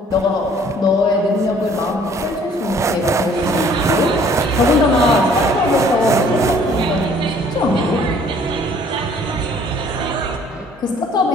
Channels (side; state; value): both; normal; correlation 0.57